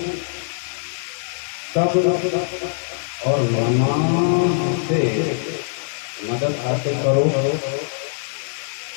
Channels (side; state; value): right; silent; digital silence